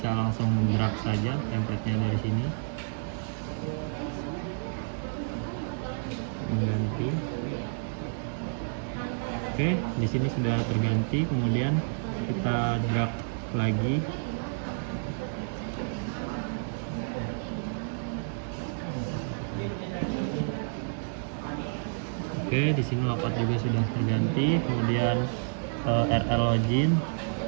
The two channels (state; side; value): silent; left; digital silence